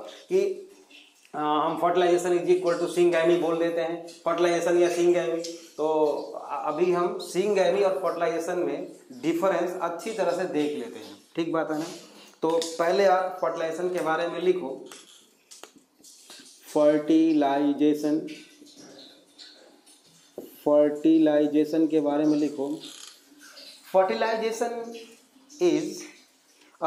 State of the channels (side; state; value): both; identical; correlation 1.00